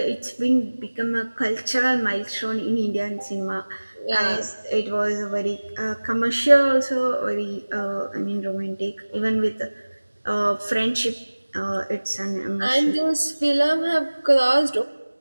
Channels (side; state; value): both; inverted; correlation -1.00